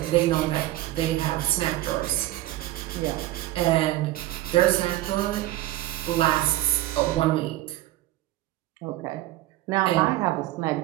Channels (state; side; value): quieter; left; 16.1 dB